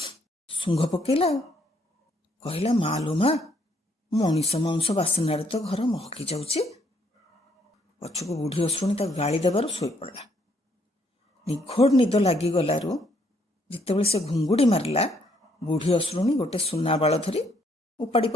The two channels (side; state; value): both; normal; correlation 0.69